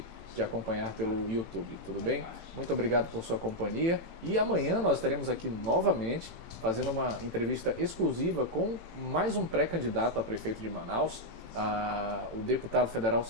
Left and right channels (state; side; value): late; left; 18 ms